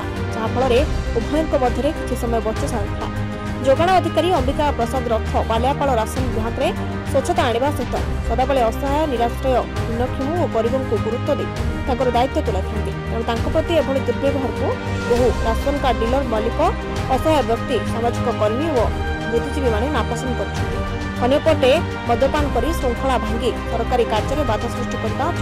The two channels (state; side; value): identical; both; correlation 1.00